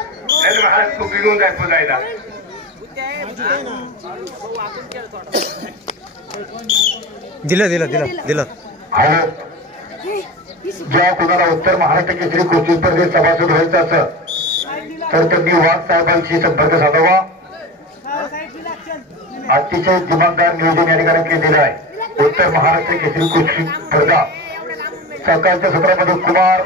महाराज तू बिघून जाय पुजायला. दिलं दिलं दिलं दिलं. ज्या कोणाला उत्तर महाराष्ट्र केसरी कुस्ती स्पर्धेत सभासद व्हायचं असं तर त्यांनी वाघ साहेबांशी संपर्क साधावा. अतिशय दिमागदार नियोजन या ठिकाणी केलेलं आहे. उत्तर महाराष्ट्र केसरी कुस्ती स्पर्धा सकाळच्या सत्रामध्ये कुमार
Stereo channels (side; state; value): both; normal; correlation 0.27